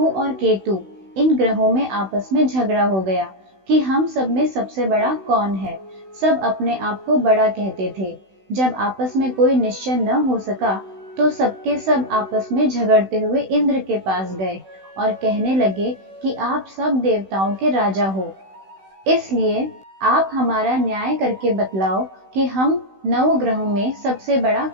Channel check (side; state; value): left; late; 16 ms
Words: और केतु इन ग्रहों में आपस में झगड़ा हो गया कि हम सब में सबसे बड़ा कौन है। सब अपने आप को बड़ा कहते थे। जब आपस में कोई निश्चय न हो सका तो सबके सब आपस में झगड़ते हुए इंद्र के पास गए और कहने लगे कि आप सब देवताओं के राजा हो, इसलिए आप हमारा न्याय करके बतलाओ कि हम नौ ग्रहों में सबसे बड़ा